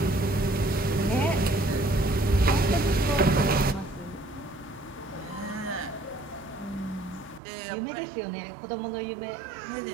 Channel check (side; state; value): left; drops out; at 7.4 s